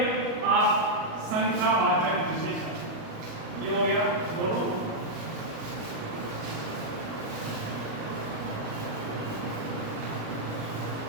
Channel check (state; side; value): late; left; 38 ms